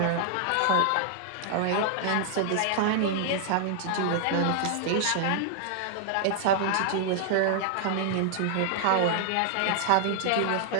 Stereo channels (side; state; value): both; different; correlation -0.01